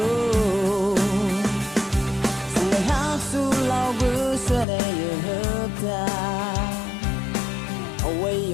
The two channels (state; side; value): drops out; right; at 4.7 s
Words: sang ngày hát su lao bữa xưa đây hợp ta away